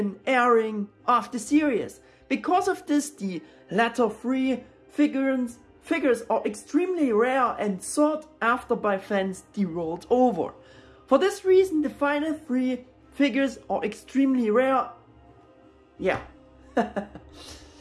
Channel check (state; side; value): identical; both; correlation 1.00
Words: airing of the series. Because of this, the latter 3 figures are extremely rare and sought after by fans the world over. For this reason, the final 3 figures are extremely rare. Yeah.